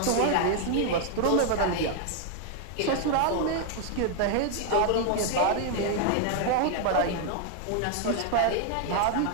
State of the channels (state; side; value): different; both; correlation 0.00